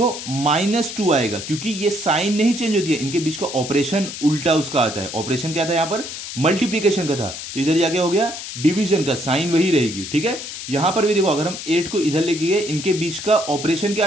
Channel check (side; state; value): left; noise; hiss, 9 dB below the sound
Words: -2 आएगा, क्योंकि ये साइन नहीं चेंज होती है, इनके बीच का ऑपरेशन उल्टा उसका आता है। ऑपरेशन क्या था यहाँ पर मल्टीप्लिकेशन का था, तो इधर जाके हो गया डिवीजन का, साइन वही रहेगी। ठीक है, यहां पर भी देखो अगर हम 8 को इधर लेके गए, इनके बीच का ऑपरेशन क्या